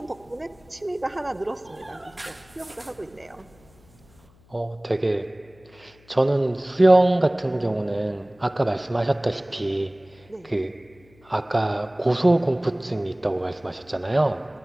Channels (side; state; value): left; noise; hum, 29 dB below the sound